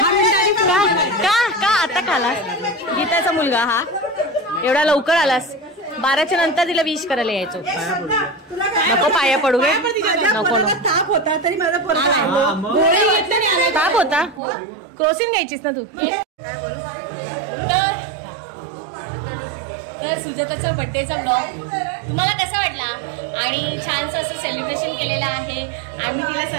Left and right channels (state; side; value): drops out; left; at 14.4 s